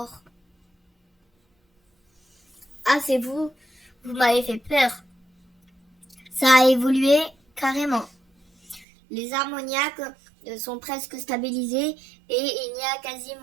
ah, c'est vous? Vous m'avez fait peur. Ça a évolué carrément. Les ammoniaques sont presque stabilisés et il n'y a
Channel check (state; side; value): drops out; left; at 8.8 s